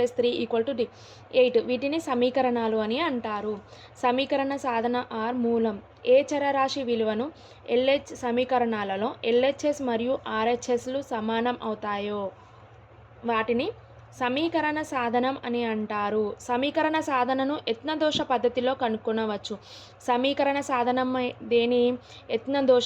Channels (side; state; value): both; identical; correlation 1.00